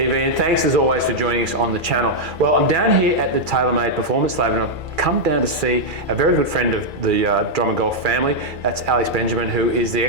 and thanks as always for joining us on the channel. Well, I'm down here at the TaylorMade Performance Lab, and I've come down to see a very good friend of the Drummond Golf family. That's Alex Benjamin, who is the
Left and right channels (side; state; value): left; late; 2.4 ms